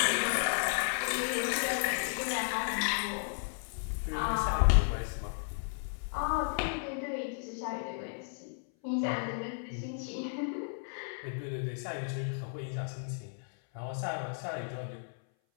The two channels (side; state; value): right; silent; 55 dB below the other